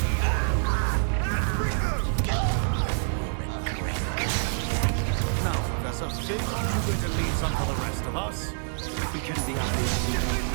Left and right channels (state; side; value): silent; left; digital silence